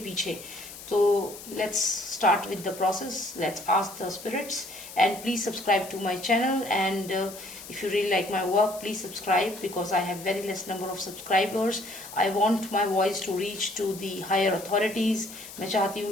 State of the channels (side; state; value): left; noise; hiss, 14 dB below the sound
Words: पीछे। तो let's start with the process, let's ask the spirits and please subscribe to my channel and if you really like my work, please subscribe because I have very less number of subscribers. I want my voice to reach to the higher authorities। मैं चाहती हूँ